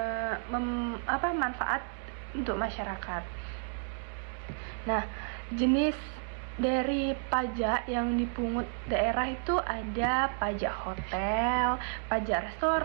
manfaat untuk masyarakat. Nah, jenis dari pajak yang dipungut daerah itu ada pajak hotel, pajak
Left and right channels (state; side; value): silent; left; 57 dB below the other